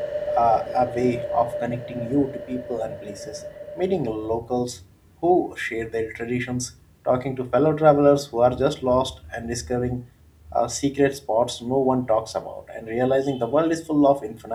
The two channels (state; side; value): identical; both; correlation 1.00